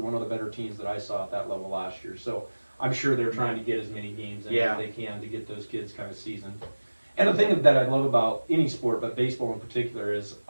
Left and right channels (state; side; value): inverted; both; correlation -1.00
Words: of the better teams that I saw at that level last year. So I'm sure they're trying to get as many games in as they can to get those kids kind of seasoned. And the thing that I love about any sport, but baseball in particular, is